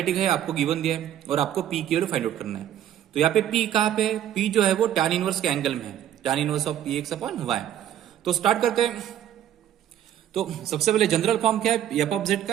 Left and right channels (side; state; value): left; quieter; 11.0 dB